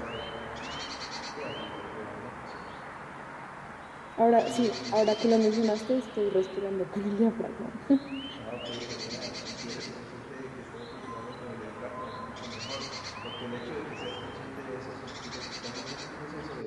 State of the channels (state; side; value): identical; both; correlation 1.00